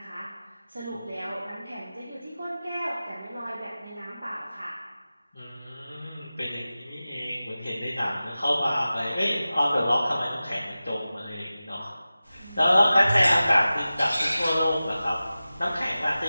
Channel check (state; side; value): inverted; both; correlation -0.96